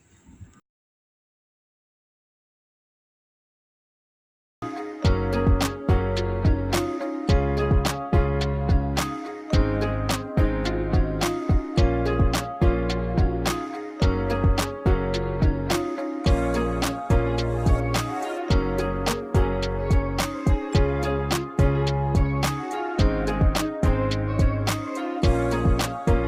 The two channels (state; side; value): identical; both; correlation 1.00